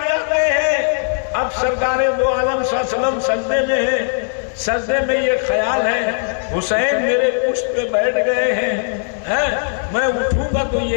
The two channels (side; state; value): right; silent; 67 dB below the other